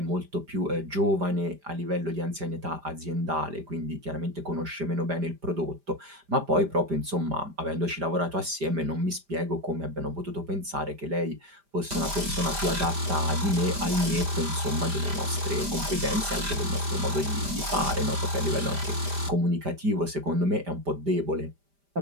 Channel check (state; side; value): late; left; 5.0 ms